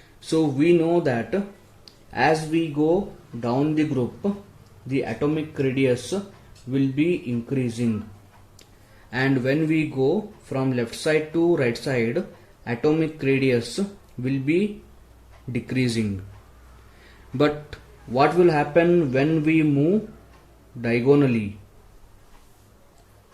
So we know that as we go down the group, the atomic radius will be increasing, and when we go from left side to right side, atomic radius will be decreasing. But what will happen when we move diagonally?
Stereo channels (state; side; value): identical; both; correlation 1.00